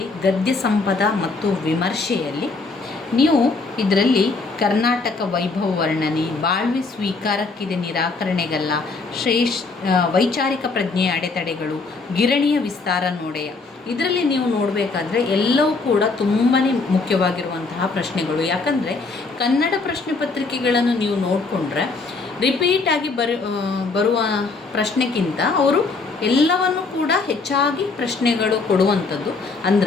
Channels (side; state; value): right; quieter; 4.0 dB